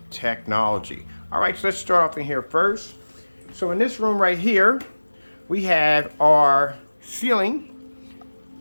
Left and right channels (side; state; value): both; inverted; correlation -1.00